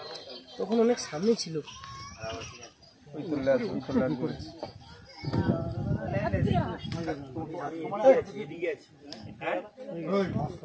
তখন অনেক সামনে ছিল।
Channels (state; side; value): identical; both; correlation 1.00